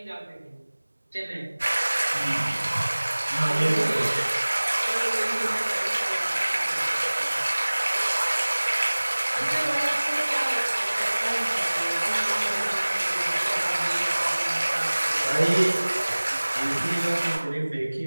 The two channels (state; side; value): inverted; both; correlation -1.00